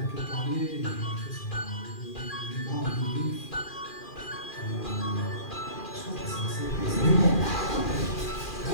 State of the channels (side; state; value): right; late; 2.4 ms